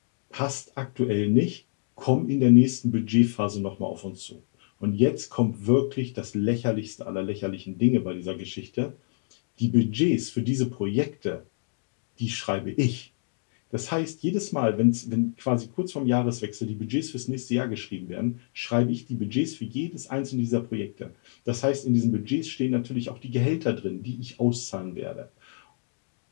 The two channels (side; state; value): right; silent; digital silence